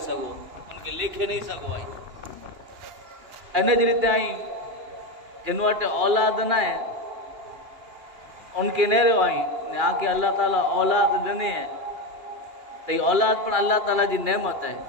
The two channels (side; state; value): left; late; 2.9 ms